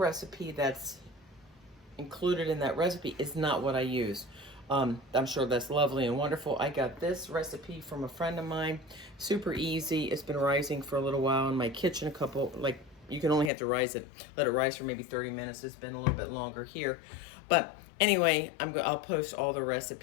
that's included in that recipe is not what I use. I'm sure that's lovely and wonderful. I got this recipe from a friend of mine. Super easy. It's been rising for a little while in my kitchen. You can only have to let it rise for maybe 30 minutes. It's been a little bit longer here. But anyway, I'll post all the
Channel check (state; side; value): drops out; right; at 13.5 s